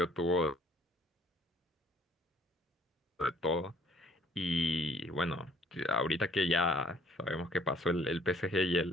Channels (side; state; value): both; normal; correlation 0.60